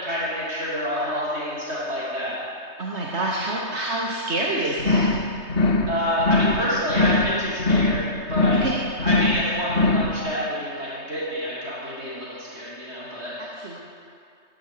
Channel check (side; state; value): left; late; 3.2 ms